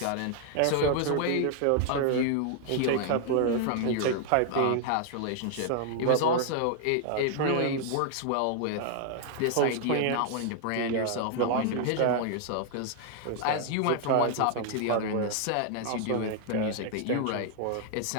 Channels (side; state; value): both; different; correlation 0.00